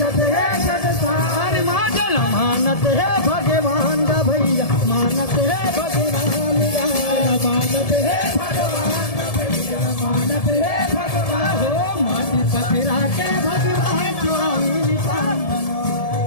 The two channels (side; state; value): right; late; 1.7 ms